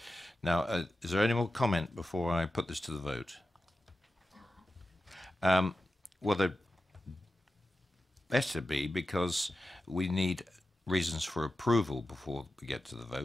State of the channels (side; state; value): both; normal; correlation 0.92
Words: Now, is there any more comment before I put this to the vote? Well, there better be, because we need reasons for approval before we get to the